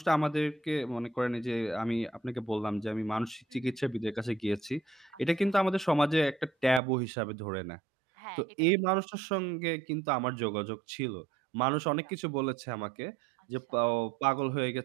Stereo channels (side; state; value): left; drops out; at 6.8 s